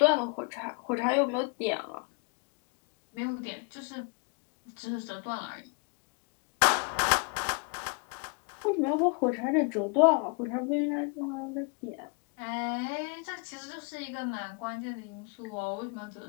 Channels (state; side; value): quieter; right; 35.8 dB